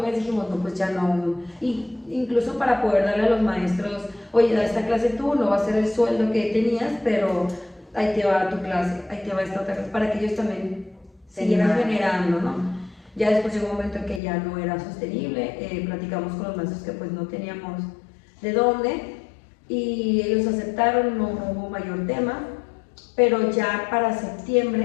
dijimos, no, pues ya no. Y incluso para poder darle a los maestros, oye, da esta clase tú, no va a ser el sueldo que tenías, pero ahí te va tu clase, ahí te va esta otra clase, para que ellos también siguieran generando, ¿no? Ya después llegó un momento en que ya no era sostenible, platicamos con los maestros que pues no teníamos de dónde y ellos aceptaron, no hubo mayor tema, pero ya para septiembre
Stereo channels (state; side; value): drops out; right; at 14.2 s